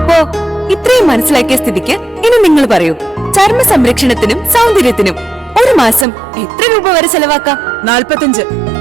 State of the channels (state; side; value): drops out; left; at 6.1 s